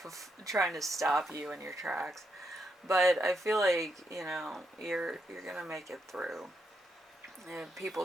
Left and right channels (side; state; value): both; normal; correlation 0.81